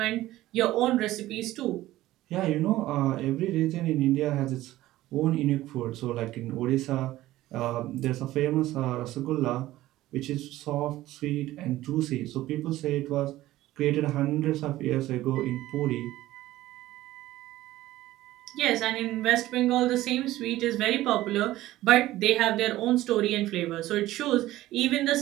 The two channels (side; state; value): left; quieter; 15.8 dB